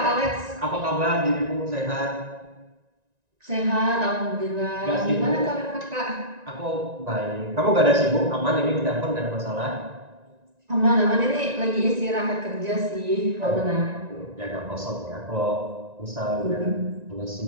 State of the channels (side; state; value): left; late; 1.9 ms